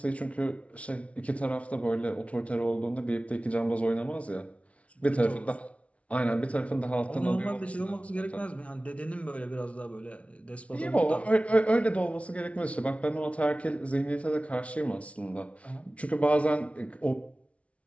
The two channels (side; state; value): right; late; 0.064 ms